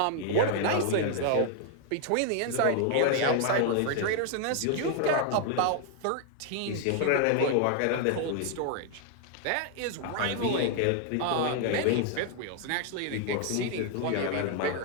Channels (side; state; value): both; different; correlation 0.00